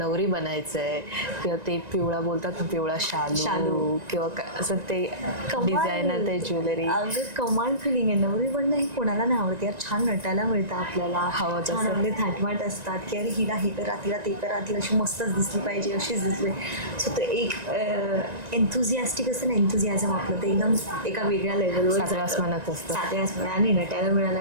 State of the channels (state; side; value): late; left; 1.9 ms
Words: बनायचंय, किंवा ते पिवळा बोलतात ना, पिवळा शालू किंवा असं ते डिझायनर, ते ज्वेलरी? अगं कमाल फिलिंग आहे. नवरी बनणं हे कोणाला नाही आवडते यार. छान नटायला मिळतं आपल्याला, हवं छान आपले थाटमाट असतात की अरे हिला हे करा, तिला ते करा, ती अशी मस्तच दिसली पाहिजे, अशीच दिसली. सो ते एक एन्थुझियास्टिक असतं ना, एन्थुझियाझम आपलं, ते एकदम एका वेगळ्या लेवलवर सातव्या आसमानात असतं. सातव्या आसमानात. आणि नटायला